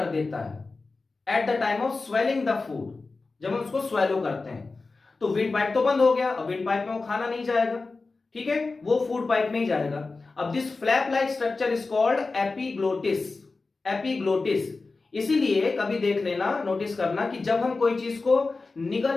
देता है at the time of swelling the food. जब हम उसको स्वेलो करते हैं तो विंड पाइप तो बंद हो गया, अब विंड पाइप में वो खाना नहीं जाएगा। ठीक है, वो फूड पाइप में ही जाएगा। अब this flap like structure is called epiglottis. Epiglottis, इसीलिए कभी देख लेना, नोटिस करना कि जब हम कोई चीज को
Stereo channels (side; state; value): right; quieter; 3.8 dB